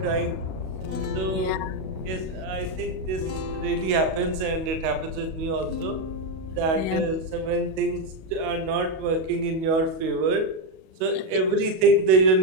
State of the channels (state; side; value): late; left; 37 ms